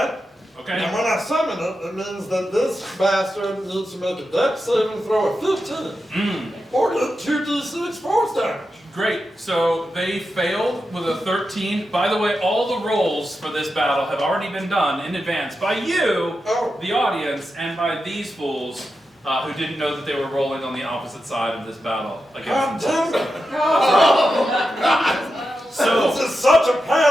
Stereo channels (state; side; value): normal; both; correlation 0.89